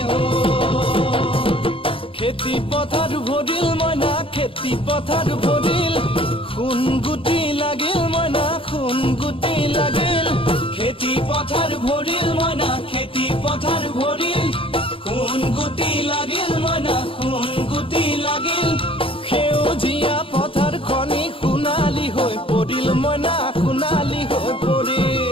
খেতি পথাৰ ভৰিল মইনা খেতি পথাৰ ভৰিল খুন গুটি লাগিল মইনা খুন গুটি লাগিল খেতি পথাৰ ভৰিল মইনা খেতি পথাৰ ভৰিল খুন গুটি লাগিল মইনা খুন গুটি লাগিল সেউজীয়া পথাৰ খনি সোণালী হৈ পৰিল মইনা সোণালী হৈ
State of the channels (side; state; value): right; late; 0.26 ms